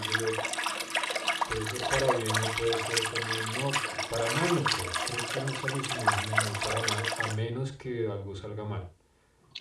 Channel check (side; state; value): both; identical; correlation 1.00